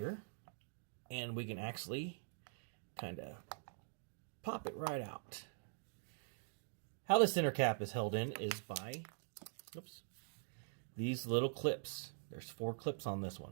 And we can actually kind of pop it right out. How the center cap is held in is by these little clips. There's 4 clips on this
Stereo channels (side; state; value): left; silent; digital silence